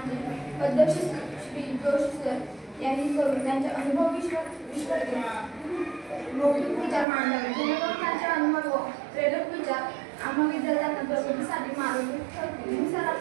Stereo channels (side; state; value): left; drops out; at 7.1 s